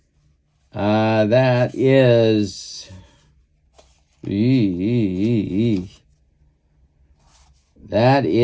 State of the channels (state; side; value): identical; both; correlation 1.00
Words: That is... That